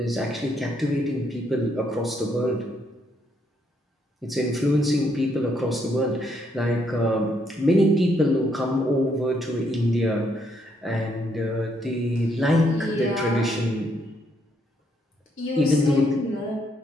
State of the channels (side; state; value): both; normal; correlation 0.73